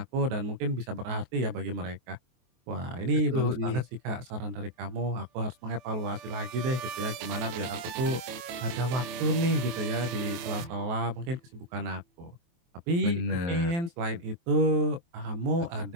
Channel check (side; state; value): left; late; 23 ms